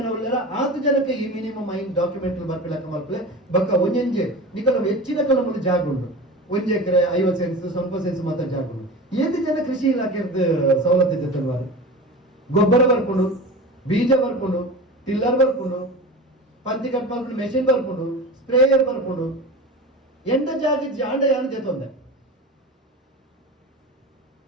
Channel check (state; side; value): normal; both; correlation 0.31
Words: ಉಳ್ಳಾರ 8 ಜನಕ್ಕೆ ಈ ಮಿನಿಮಮ್ 5 ಡಾಕ್ಯುಮೆಂಟ್ ಬರ್ಪಿಲಕ್ಕ ಮಲ್ಪಲೆ ಬಕ್ಕ ಒಂಜೆ ನಿಖಲ ಹೆಚ್ಚಿನ ಕಲ ಮುಂದೆ ಜಾಗ ಉಂಟು 1 ಎಕರೆ 50 ಸೆನ್ಸ್ ಸ್ವಲ್ಪ ಸೆನ್ಸ್ ಮಾತ್ರ ಜಾಗ ಉಂಟು 8 ಜನ ಕೃಷಿ ಇಲಾಖೆದ ಸವಲತ್ತು ಇದೆ ತಲ್ವಾರ ಗೊಬ್ಬರ ಬರ್ಕೊಂಡು ಬೀಜ ಬರ್ಕೊಂಡು ಟಿಲ್ಲರ್ ಬರ್ಕೊಂಡು ಪಂತಿ ಕಟ್ ಮಾಡ್ಕೊಂಡು ಮೆಷಿನ್ ಬರ್ಕೊಂಡು ಸ್ಪ್ರೇಯರ್ ಬರ್ಕೊಂಡು ಎಂಡ ಜಾಗಿಜ್ಜಿ ಆಂಡ ಯಾನು ಜೊತೆ